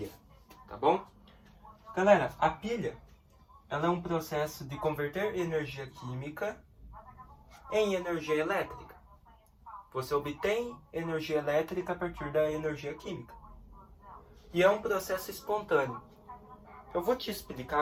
tá bom? Galera, a pilha, ela é um processo de converter energia química em energia elétrica. Você obtém energia elétrica a partir da energia química. E é um processo espontâneo. Eu vou te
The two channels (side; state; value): both; identical; correlation 1.00